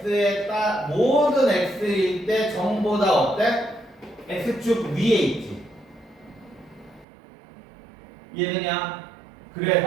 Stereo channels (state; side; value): drops out; left; at 7.1 s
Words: x일 때 전보다 어때? x축 위에 있지. 이해되냐?